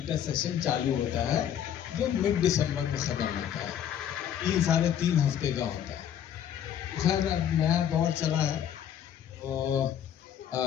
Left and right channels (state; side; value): quieter; right; 9.6 dB